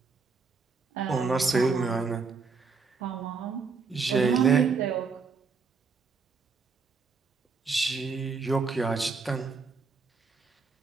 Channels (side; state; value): left; quieter; 4.8 dB